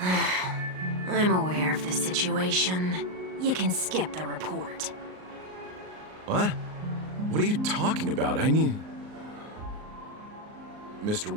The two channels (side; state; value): left; late; 38 ms